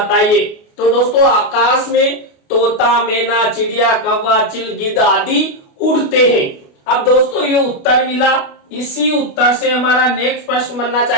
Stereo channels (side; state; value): right; late; 29 ms